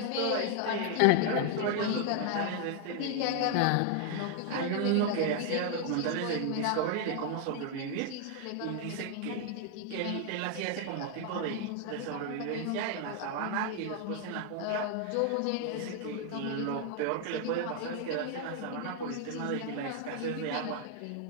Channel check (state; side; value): different; both; correlation 0.00